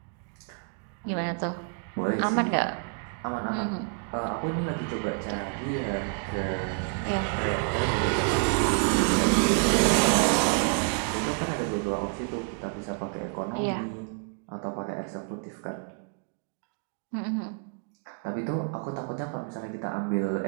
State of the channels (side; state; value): left; quieter; 39.9 dB